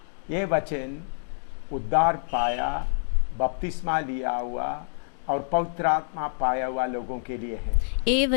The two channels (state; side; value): silent; right; digital silence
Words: ये वचन उद्धार पाया, बपतिस्मा लिया हुआ और पवित्र आत्मा पाया हुआ लोगों के लिए है। ये